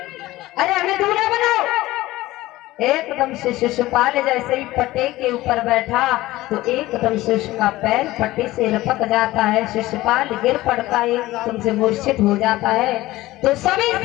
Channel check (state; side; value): quieter; right; 17.5 dB